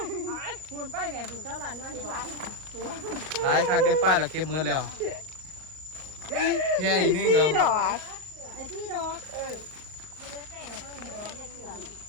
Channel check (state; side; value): late; left; 39 ms